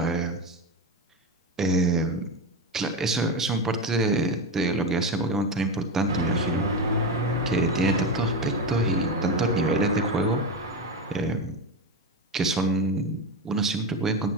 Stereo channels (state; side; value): normal; both; correlation 0.16